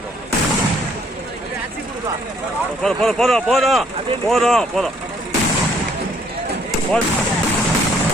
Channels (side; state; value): both; normal; correlation 0.64